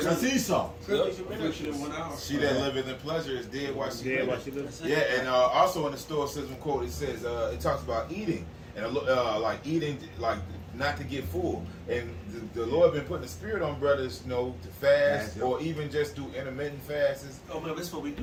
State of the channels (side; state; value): both; identical; correlation 1.00